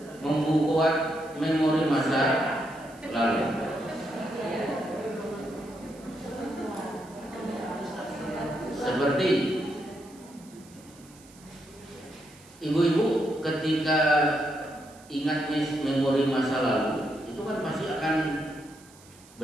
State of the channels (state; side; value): noise; right; hiss, 24 dB below the sound